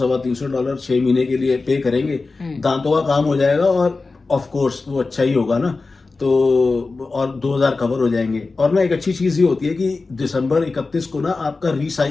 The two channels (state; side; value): quieter; right; 3.8 dB